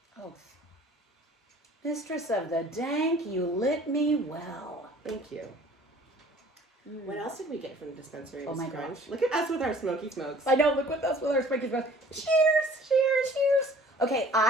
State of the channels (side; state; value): both; normal; correlation 0.51